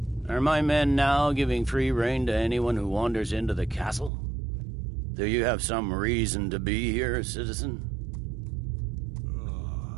Are my men now giving free rein to anyone who wanders into the castle? Do you have some reason to be here, citizen?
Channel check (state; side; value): drops out; left; at 4.1 s